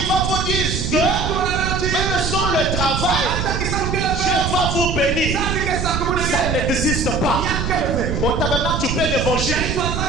que même sans le travail, Dieu va vous bénir. Ça n'existe pas. Au tabernacle, tu fais l'évangile.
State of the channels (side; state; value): right; noise; rumble, 2 dB below the sound